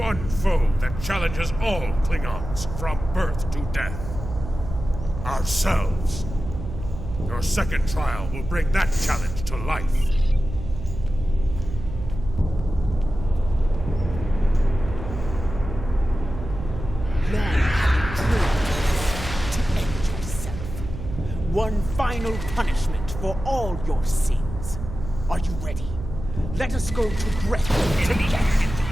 foe that challenges all Klingons from birth to death. Ourselves. Your second trial will bring that challenge to life. Long have you dreamed to end yourself. One final punishment for all your sins. Are you ready? Let us go to Grethel together.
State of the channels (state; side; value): noise; right; hum, 9 dB below the sound